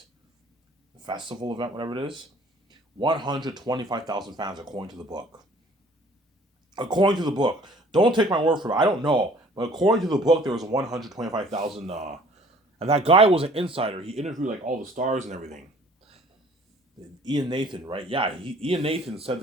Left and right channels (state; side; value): normal; both; correlation 0.54